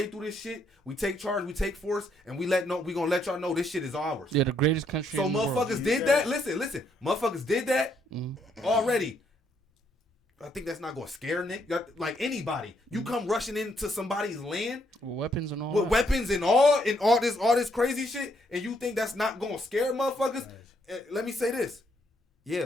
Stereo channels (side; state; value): both; normal; correlation 0.73